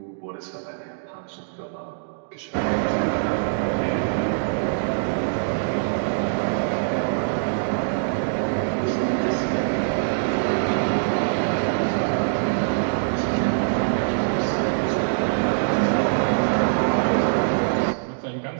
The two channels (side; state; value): left; silent; digital silence